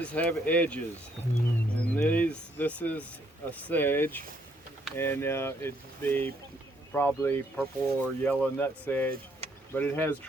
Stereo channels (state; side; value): normal; both; correlation 0.69